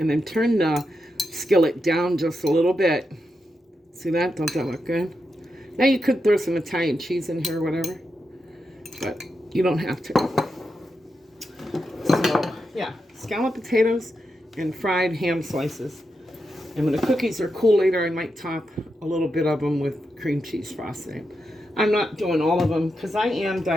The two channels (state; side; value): normal; both; correlation 0.86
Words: then turn the skillet down just a little bit. See that? Don't that look good? Now you could throw some Italian cheese in here or whatever, but you don't have to. So yeah, scalloped potatoes and fried ham slices. And when the cookies are cool later, I might top a little bit of them with cream cheese frosting. I'm not doing all of them because I am